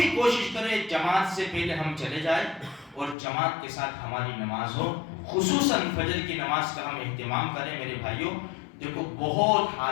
کوشش کریں جماعت سے پہلے ہم چلے جائیں اور جماعت کے ساتھ ہماری نماز ہو۔ خصوصاً فجر کی نماز کا ہم اہتمام کریں میرے بھائیوں۔ دیکھو بہت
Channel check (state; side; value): drops out; right; at 3.2 s